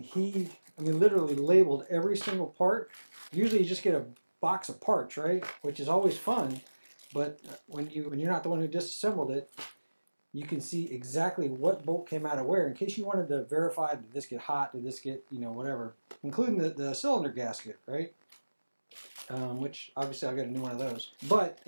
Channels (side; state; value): both; inverted; correlation -1.00